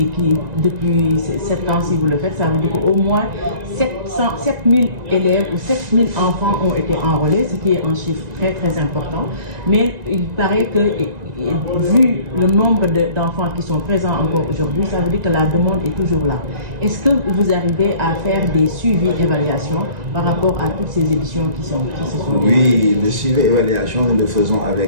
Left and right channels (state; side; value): late; left; 1.9 ms